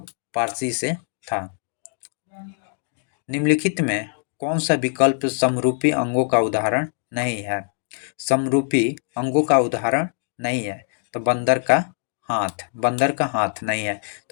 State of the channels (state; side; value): silent; right; 60 dB below the other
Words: पारसी से था। निम्नलिखित में कौन सा विकल्प समरूपी अंगों का उदाहरण नहीं है? समरूपी अंगों का उदाहरण नहीं है तो बंदर का हाथ नहीं है।